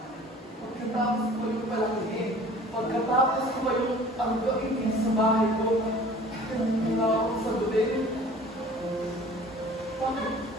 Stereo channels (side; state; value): both; normal; correlation 0.47